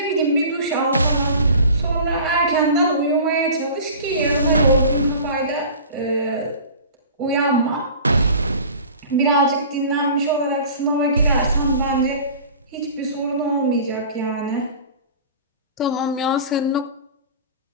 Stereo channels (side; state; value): both; inverted; correlation -0.41